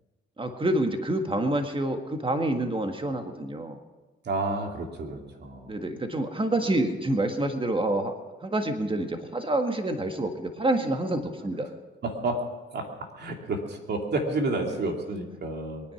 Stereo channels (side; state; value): both; normal; correlation 0.57